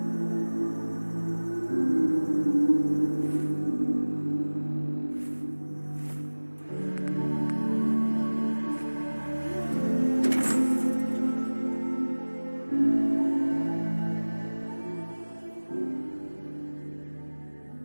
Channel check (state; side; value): inverted; both; correlation -1.00